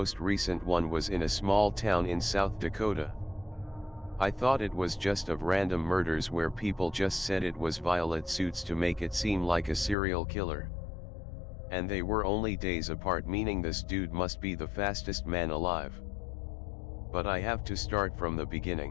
recent one was in a small town in South Dakota. I thought it was just of random murders where people just said it was violet suits to make it seem like a serial killer. And they were only days apart, meaning this dude must be the fastest man alive. But I have to start from the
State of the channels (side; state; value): right; drops out; at 10.0 s